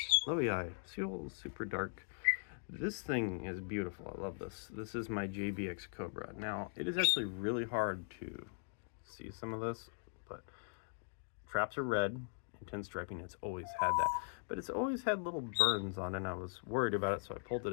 Loei, Seal Super Dark. This thing is beautiful. I love this. This is my JBX Cobra. Now, it is actually really hard to see some of this, but traps are red, intense striping. It's always had that. But it's always had little burns on it, and I was worried about it, so I pulled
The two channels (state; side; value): silent; right; digital silence